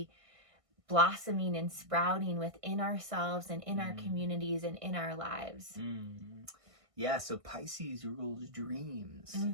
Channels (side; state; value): left; late; 1.6 ms